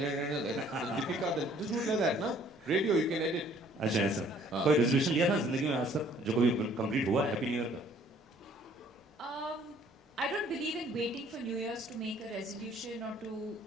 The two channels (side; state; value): both; normal; correlation 0.58